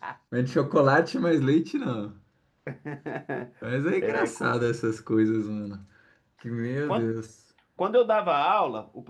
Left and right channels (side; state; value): both; identical; correlation 1.00